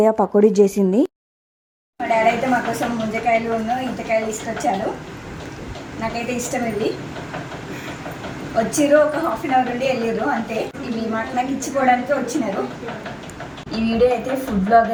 పకోడీ చేసింది. మా డాడీ అయితే మా కోసం ముంజకాయలు ఇంతకాయలు తీసుకొచ్చాడు. నాకైతే ఇష్టం ఇవి. వచ్చిర్రు, ఒక 1/2 hour నుండి వెళ్ళిర్రు అంతే. ఇవి నాకు ఇచ్చిపోవడానికి వచ్చినారు. ఈ వీడియో అయితే ఫుడ్ బ్లాగ్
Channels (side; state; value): both; identical; correlation 1.00